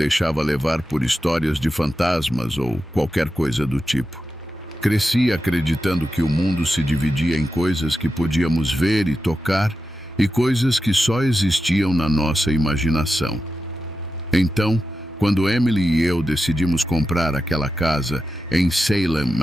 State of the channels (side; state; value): both; normal; correlation 0.90